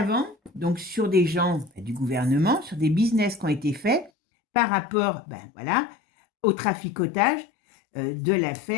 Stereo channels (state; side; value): drops out; right; at 4.1 s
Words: donc sur des gens du gouvernement, sur des business qui ont été faits par rapport, ben voilà, au traficotage de